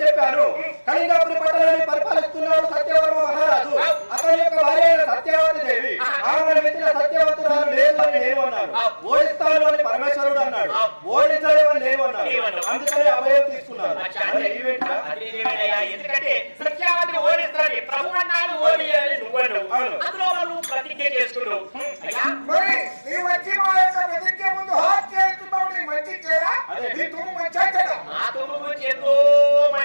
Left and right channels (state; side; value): inverted; both; correlation -1.00